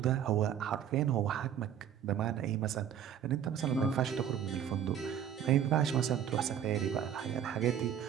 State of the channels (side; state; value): left; quieter; 9.3 dB